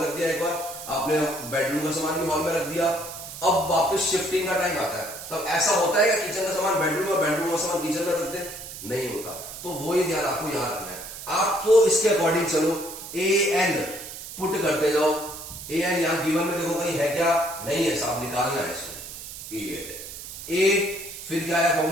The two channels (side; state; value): right; noise; hiss, 11 dB below the sound